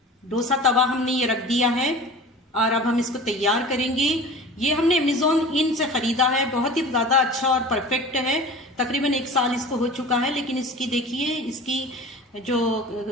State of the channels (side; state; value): both; normal; correlation 0.38